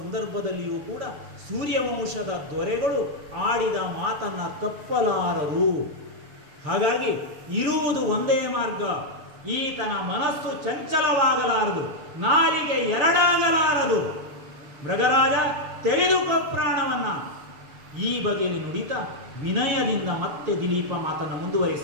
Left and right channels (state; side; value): late; left; 6.9 ms